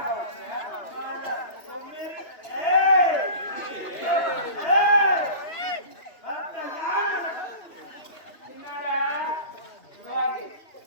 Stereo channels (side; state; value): right; late; 2.9 ms